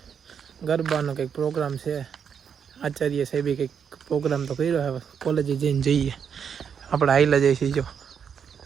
ગરબાનો કંઈક પ્રોગ્રામ છે, આચાર્ય સાહેબે કંઈક પ્રોગ્રામ તો કર્યો. હવે કોલેજે જઈને જઈએ. આપણે હાઈલા જઈશું જો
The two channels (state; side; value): quieter; left; 7.3 dB